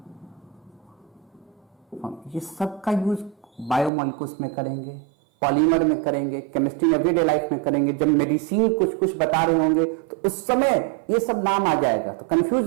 सब का यूज बायोमॉलिक्यूल्स में करेंगे, पॉलीमर में करेंगे, केमिस्ट्री एवरीडे लाइफ में करेंगे। जब मेडिसिन कुछ कुछ बता रहे होंगे तो उस समय ये सब नाम आ जाएगा, तो कंफ्यूज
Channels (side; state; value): left; drops out; at 3.9 s